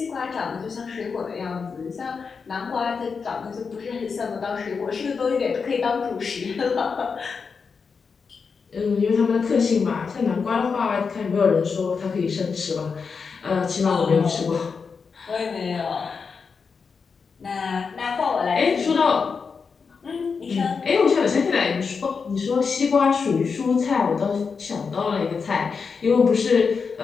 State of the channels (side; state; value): right; quieter; 5.4 dB